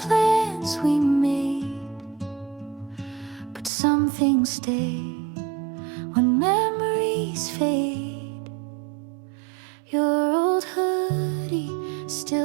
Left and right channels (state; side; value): drops out; left; at 3.7 s